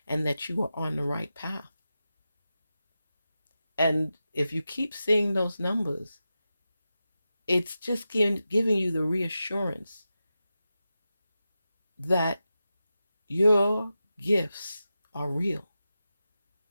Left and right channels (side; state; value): both; inverted; correlation -0.92